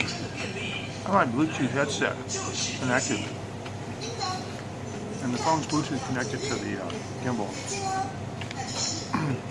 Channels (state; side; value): identical; both; correlation 1.00